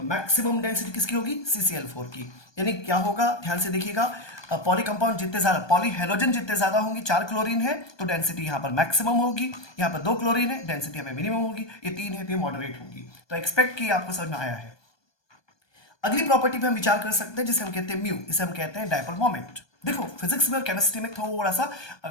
मैक्सिमम डेंसिटी किसकी होगी? CCl4 की। यानी क्या होगा, ध्यान से देखिएगा, पॉली कंपाउंड जितने ज्यादा, पॉली हेलोजन जितने ज्यादा होंगे, 4 क्लोरीन है तो डेंसिटी यहाँ पर मैक्सिमम होगी, यहाँ पर 2 क्लोरीन है डेंसिटी हमें मिनिमम होगी, ये 3 है तो ये मॉडरेट होगी। तो एक्सपेक्ट की आपको समझ में आया है। अगली प्रॉपर्टी पे हम विचार कर सकते हैं जिसे हम कहते हैं म्यू, इसे हम कहते हैं डायपोल मोमेंट। देखो फिजिक्स में और केमिस्ट्री में थोड़ा सा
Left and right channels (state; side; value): late; right; 1.2 ms